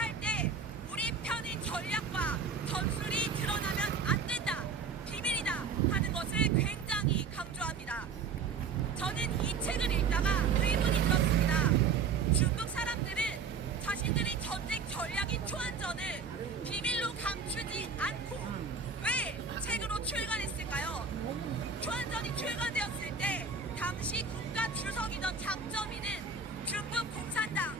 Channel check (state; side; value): quieter; left; 5.3 dB